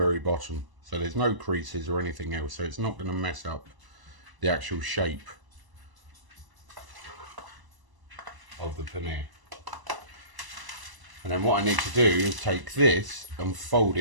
bottom. So there's no creases or anything else, so it's not going to mess up the actual shape of the paneer. And then what I need to do is take this and fold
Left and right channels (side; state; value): left; late; 1.0 ms